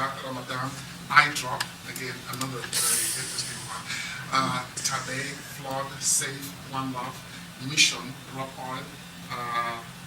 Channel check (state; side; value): identical; both; correlation 1.00